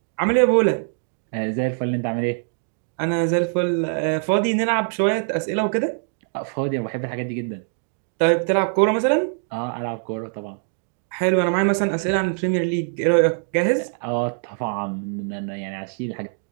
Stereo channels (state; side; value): silent; left; digital silence